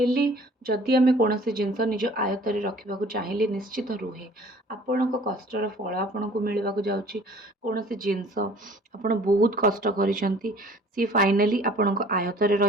जदि आम कौन जिनस निज आयतर रखा चाहिए निश्चित रुहे। आपण कष्टर फल आपन को मिलवा जाऊँगी। कौन जिनस आपड़ बहुत कष्ट करी सी फाइनाली आपण आयतर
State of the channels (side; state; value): both; normal; correlation 0.51